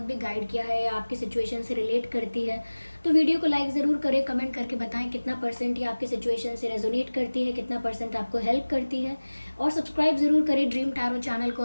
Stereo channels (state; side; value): inverted; both; correlation -1.00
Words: भी गाइड किया है या आपकी सिचुएशन से रिलेट करती है तो वीडियो को लाइक ज़रूर करें, कमेंट करके बताएं कितना परसेंट ये आपकी सिचुएशन से रेजोनेट करती है, कितना परसेंट आपको हेल्प करती है। और सब्सक्राइब ज़रूर करें ड्रीम टैरो चैनल को